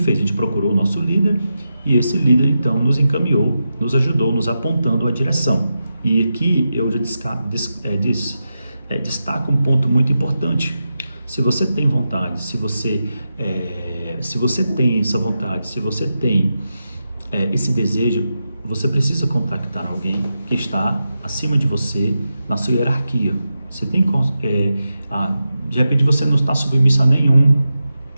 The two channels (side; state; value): both; inverted; correlation -0.89